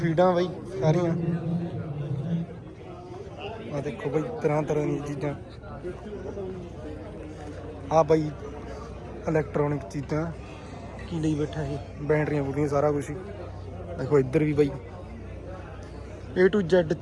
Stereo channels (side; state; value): both; identical; correlation 1.00